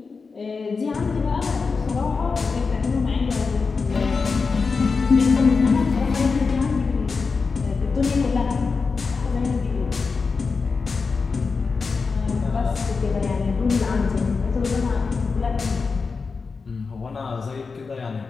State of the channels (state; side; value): quieter; right; 4.7 dB